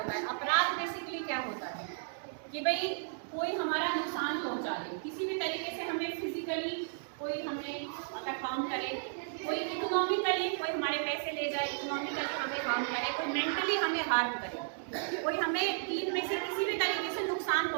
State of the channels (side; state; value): left; silent; digital silence